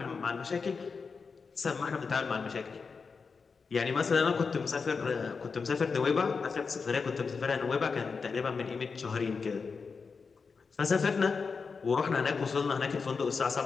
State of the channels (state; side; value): quieter; right; 5.1 dB